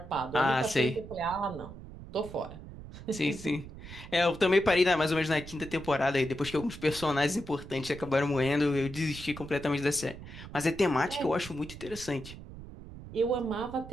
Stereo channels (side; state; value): right; noise; rumble, 14 dB below the sound